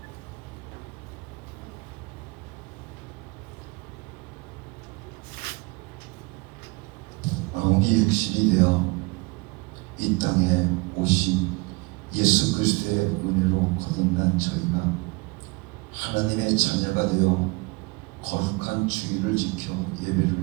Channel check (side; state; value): left; quieter; 26.5 dB